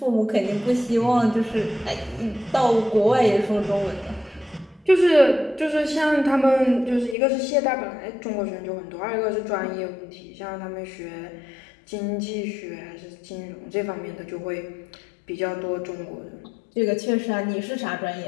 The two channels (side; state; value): right; drops out; at 7.2 s